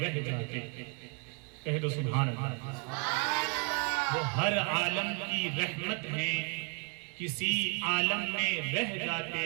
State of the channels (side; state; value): left; quieter; 35.1 dB